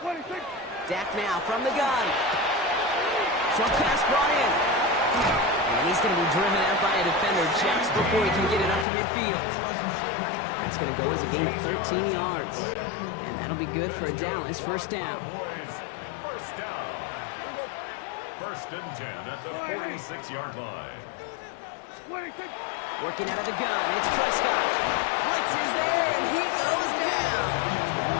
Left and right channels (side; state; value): right; drops out; at 8.8 s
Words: Dak now from the gun. Short pass brought in. And he's going to be driven out by a defender just before he can get it up to midfield. That's going to go as a gain of 13 yards. And that'll be good for a Dallas 1st down. 1st down. 1st and 10 at the 46-yard line. Working out of the gun, it's Prescott. Blitz is there, and he goes down.